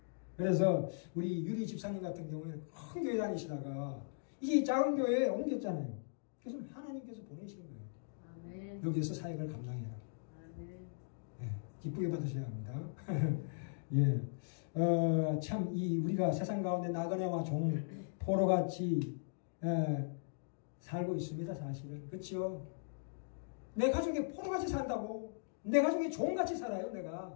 그래서 우리 유리 집사님 같은 경우에는 큰 교회 다니시다가 이제 작은 교회에 옮겼잖아요. 그래서 하나님께서 보내신 거예요. 아멘. 여기에서 사역을 감당해라. 아멘. 네, 기쁘게 받으셔야 합니다. 예. 참, 우리가 세상 가운데 나그네와 종, 포로같이, 살고 있습니다, 사실은. 그쵸? 내 가족이 포로같이 산다고. 내 가족이 종같이 살아요,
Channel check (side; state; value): right; silent; digital silence